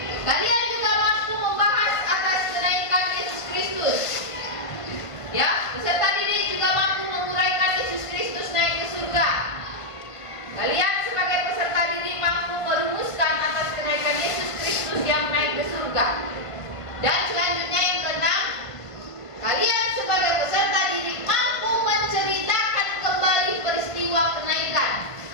Kalian juga mampu membahas atas kenaikan Yesus Kristus. Ya, peserta didik juga mampu menguraikan Yesus Kristus naik ke surga. Kalian sebagai peserta didik mampu merumuskan atas kenaikan Yesus Kristus yang naik ke surga. Dan selanjutnya yang keenam, kalian sebagai peserta didik mampu menceritakan kembali peristiwa kenaikan.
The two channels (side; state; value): right; late; 1.5 ms